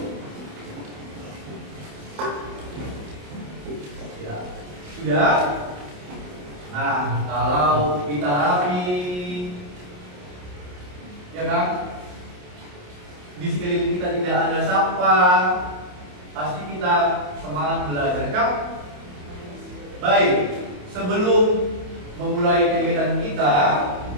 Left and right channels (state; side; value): late; left; 28 ms